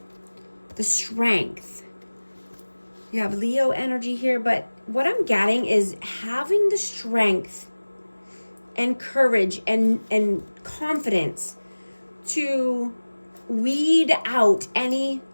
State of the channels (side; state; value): both; inverted; correlation -1.00